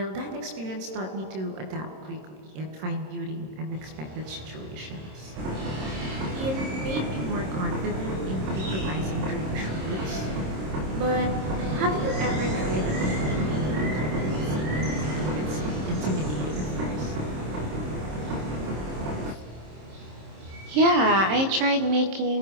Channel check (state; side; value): late; left; 26 ms